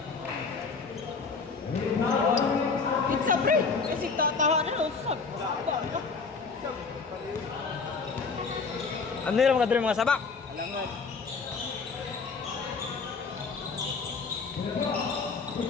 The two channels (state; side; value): quieter; right; 4.8 dB